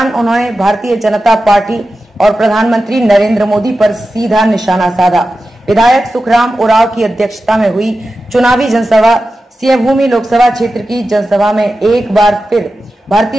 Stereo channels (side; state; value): both; normal; correlation 0.93